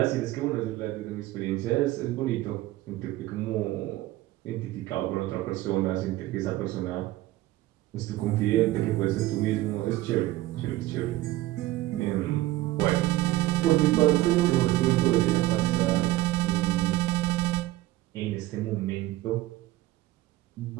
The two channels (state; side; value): quieter; left; 16.8 dB